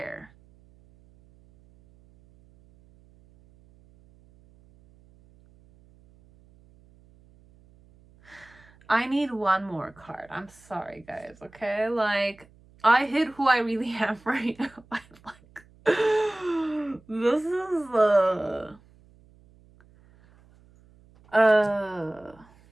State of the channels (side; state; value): right; noise; hum, 28 dB below the sound